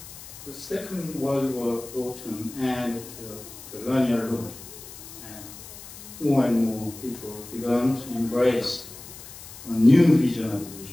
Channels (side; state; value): left; noise; hiss, 15 dB below the sound